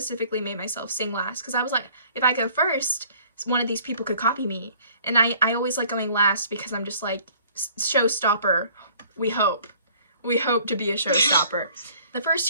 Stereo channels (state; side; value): inverted; both; correlation -0.55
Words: made myself sing last because I was like, if I go first, one of these people could copy me. And I always like going last because I'm just like, showstopper, we hope. We hope to be a showstopper. The first